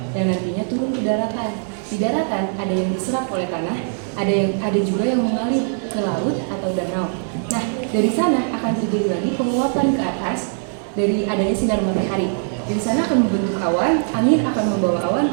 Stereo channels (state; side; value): silent; left; digital silence